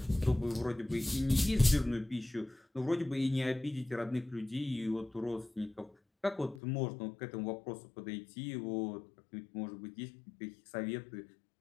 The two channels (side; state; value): right; drops out; at 6.6 s